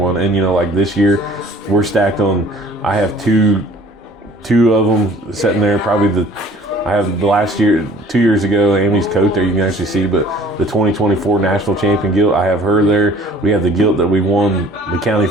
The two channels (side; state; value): both; normal; correlation 0.52